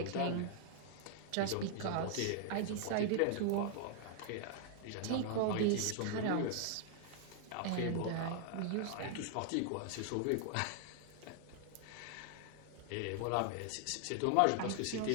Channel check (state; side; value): different; both; correlation 0.00